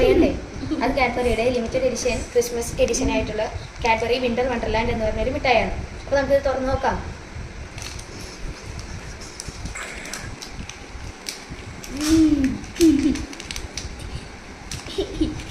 അത് കാഡ്ബറിയുടെ ലിമിറ്റഡ് എഡിഷൻ ക്രിസ്മസ് എഡിഷൻ ആയിട്ടുള്ള കാഡ്ബറി വിന്റർ വണ്ടർലാൻഡ് എന്ന് പറഞ്ഞൊരു മിഠായിയാണ്. അപ്പോൾ നമുക്കിത് തുറന്ന് നോക്കാം.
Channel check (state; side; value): identical; both; correlation 1.00